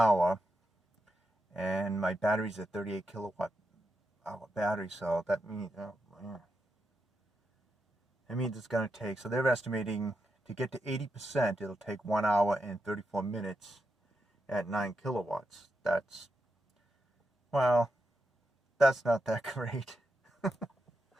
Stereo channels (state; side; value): normal; both; correlation 0.85